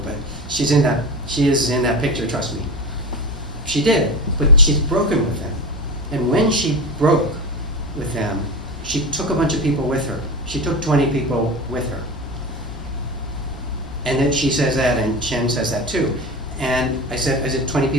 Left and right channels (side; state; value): both; normal; correlation 0.26